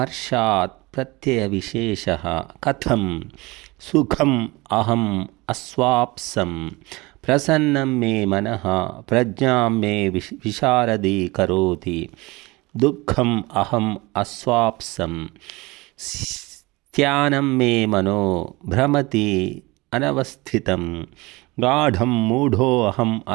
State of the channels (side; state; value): left; quieter; 22.9 dB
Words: प्रत्ययविशेषः कथं सुखम् अहम् अस्वाप्सं प्रसन्नं मे मनः प्रज्ञां मे विशारदी करोति। दुःखम् अहम् अस्वाप्सं स्त्यानं मे मनो भ्रमति अनवस्थितं। गाढं मूढोऽहम्